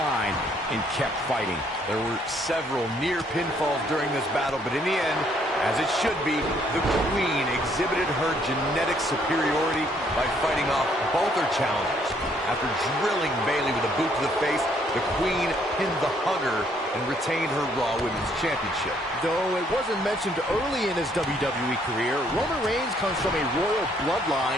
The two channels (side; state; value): both; normal; correlation 0.67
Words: and kept fighting. There were several near pinfalls during this battle, but in the end, as it should be, the Queen exhibited her genetic superiority by fighting off both her challengers. After drilling Bayley with a boot to the face, the Queen pinned the Hugger and retained her Raw Women's Championship. Though it wasn't mentioned early in his WWE career, Roman Reigns comes from a royal bloodline